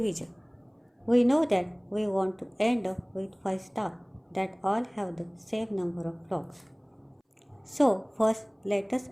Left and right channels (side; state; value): both; identical; correlation 1.00